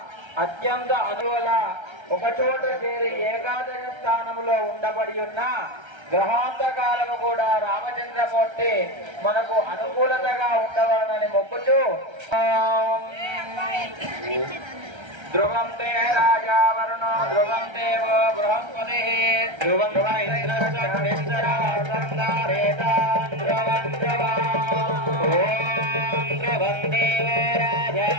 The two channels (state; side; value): late; left; 1.3 ms